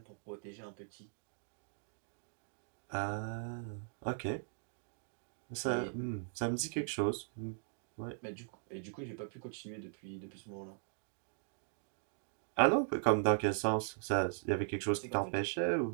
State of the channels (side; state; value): left; silent; digital silence